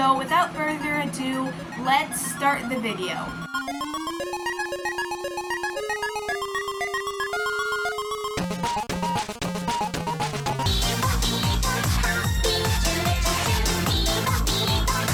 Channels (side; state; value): both; identical; correlation 1.00